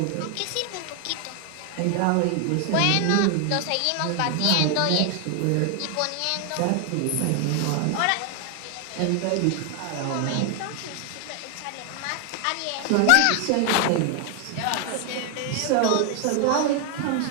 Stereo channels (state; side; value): different; both; correlation 0.00